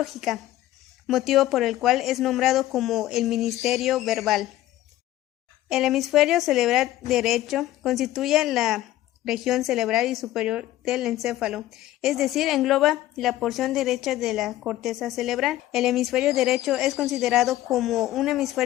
motivo por el cual es nombrado como el ministerio verbal. El hemisferio cerebral derecho constituye la región cerebral y superior del encéfalo, es decir, engloba la porción derecha de la corteza cerebral. El hemisferio derecho es considerado como un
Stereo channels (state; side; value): quieter; right; 14.7 dB